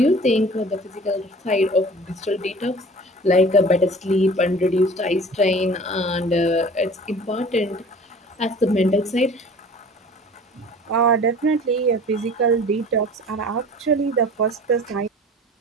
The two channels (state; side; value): normal; both; correlation 0.44